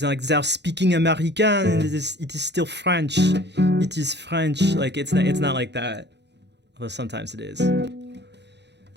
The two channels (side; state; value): left; late; 0.50 ms